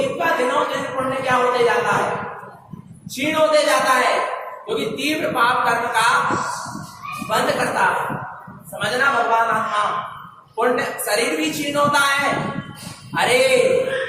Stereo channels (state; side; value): identical; both; correlation 1.00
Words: का दिनों दिन पुण्य क्या होते जाता है? क्षीण होते जाता है, क्योंकि तीव्र पाप कर्म का बंद करता है। समझना भगवान। आत्मा पुण्य, शरीर भी क्षीण होता है। अरे